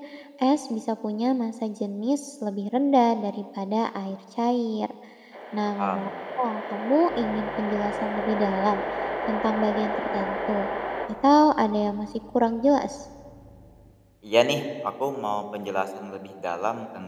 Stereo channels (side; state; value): both; identical; correlation 1.00